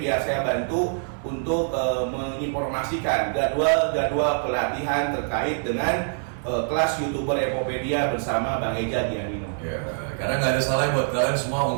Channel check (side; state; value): left; silent; 62 dB below the other